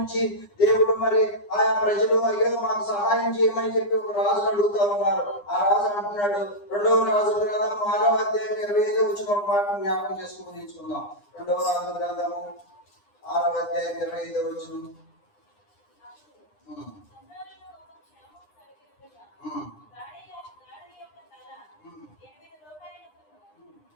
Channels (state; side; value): late; right; 9.8 ms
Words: దేవుడు మరి ఆయా ప్రజలు అయ్యో మాకు సహాయం చేయమని చెప్పి ఒక రాజును అడుగుతూ ఉన్నారు. ఆ రాజు అంటున్నాడు, 2వ రాజుల గ్రంథం 6వ అధ్యాయం 25వ వచనం ఒక మాట జ్ఞాపకం చేసుకుని తీసుకుందాం. 2వ రాజుల గ్రంథము 6వ అధ్యాయం 25వ వచనం.